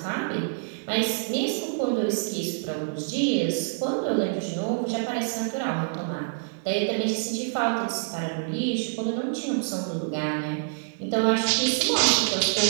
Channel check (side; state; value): left; silent; digital silence